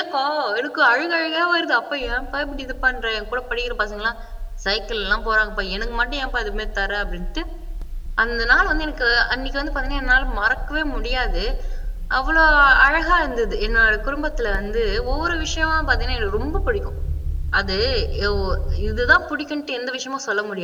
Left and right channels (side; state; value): both; identical; correlation 1.00